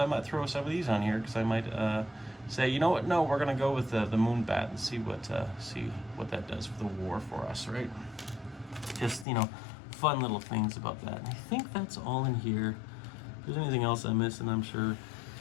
might throw some of these on here because I might say, you know what, no, we're going to go with the Moonbat and see what that does for the war for us, right? Just, you know, fun little things about that. And I think that's all in here. If there's anything else I missed, and I'm sure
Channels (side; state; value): right; drops out; at 9.2 s